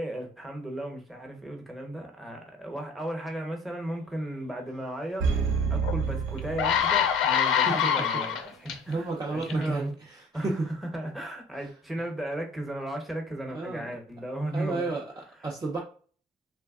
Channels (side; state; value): both; normal; correlation 0.50